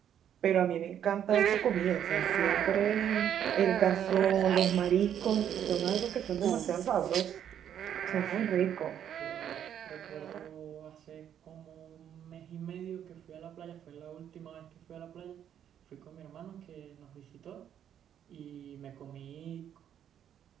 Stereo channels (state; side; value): quieter; left; 9.6 dB